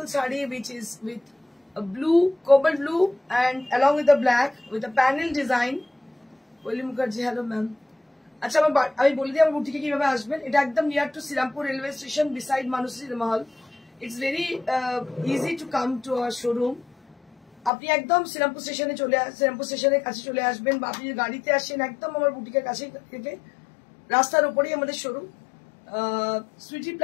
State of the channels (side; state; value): right; drops out; at 17.7 s